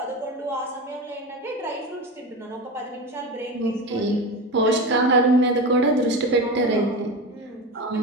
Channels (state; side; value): normal; both; correlation 0.24